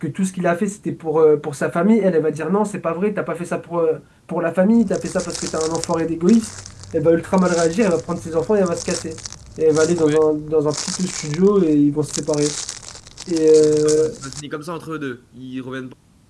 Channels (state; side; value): identical; both; correlation 1.00